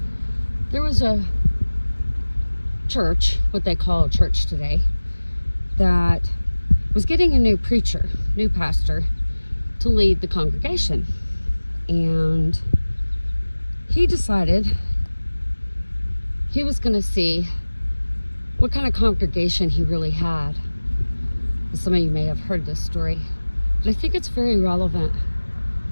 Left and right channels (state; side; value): inverted; both; correlation -1.00